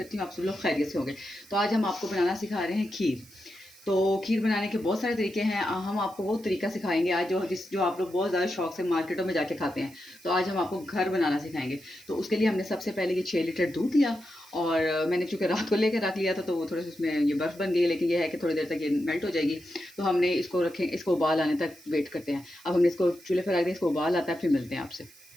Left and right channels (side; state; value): right; noise; hiss, 23 dB below the sound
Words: हूँ आप सब लोग खैरियत से होंगे। तो आज हम आपको बनाना सिखा रहे हैं खीर। तो खीर बनाने के बहुत सारे तरीके हैं। हम आपको वो तरीका सिखाएंगे आज जो आप लोग बहुत ज़्यादा शौक से मार्केटों में जाके खाते हैं। तो आज हम आपको घर बनाना सिखाएंगे। तो उसके लिए हमने सबसे पहले ये 6 लीटर दूध लिया और मैंने चूँकि रात को लेकर रख लिया था तो वो थोड़े से उसमें ये बर्फ़ बन गई, लेकिन ये है कि थोड़ी देर तक ये मेल्ट हो जाएगी। तो हमने इसको रखें, इसको उबाल आने तक वेट करते हैं। अब हमने इसको चूल्हे पर रख दिया, इसको उबाल आता है, फिर मिलते हैं आपसे।